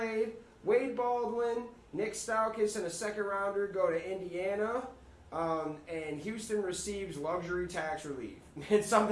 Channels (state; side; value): identical; both; correlation 1.00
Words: Wade Baldwin, Nick Stauskas, and a second rounder go to Indiana, and Houston receives luxury tax relief. It's